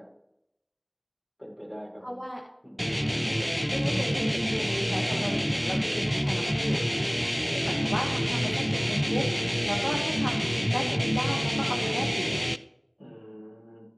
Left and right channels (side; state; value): both; identical; correlation 1.00